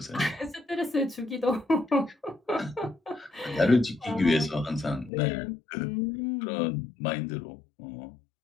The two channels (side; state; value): right; drops out; at 5.1 s